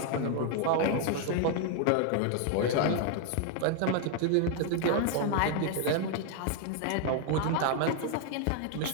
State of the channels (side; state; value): both; different; correlation 0.00